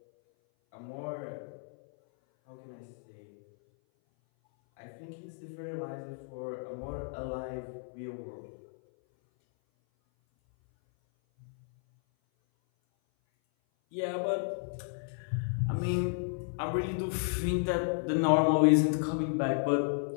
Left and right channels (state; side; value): silent; right; 56 dB below the other